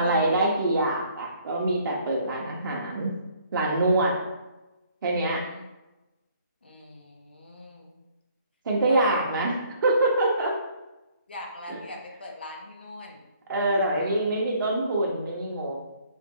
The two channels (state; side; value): inverted; both; correlation -0.61